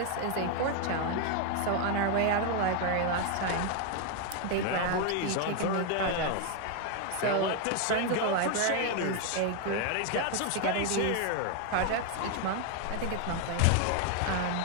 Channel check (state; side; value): different; both; correlation 0.01